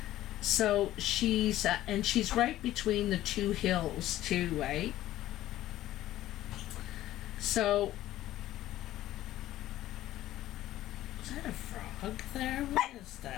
So she's and she's right between the two hills too, right? So is that a frog there? What is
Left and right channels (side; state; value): right; quieter; 14.4 dB